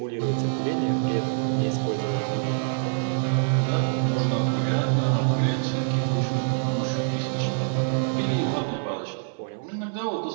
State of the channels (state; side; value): silent; left; 57 dB below the other